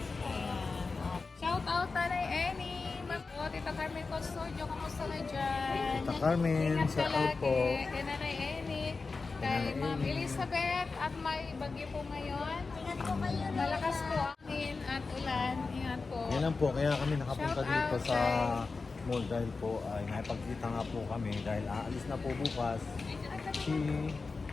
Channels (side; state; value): right; quieter; 4.2 dB